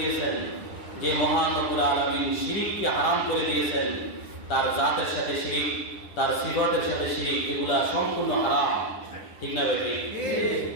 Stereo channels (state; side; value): late; right; 10 ms